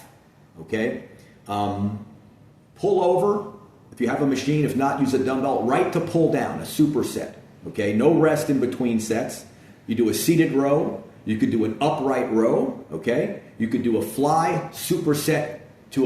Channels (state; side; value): identical; both; correlation 1.00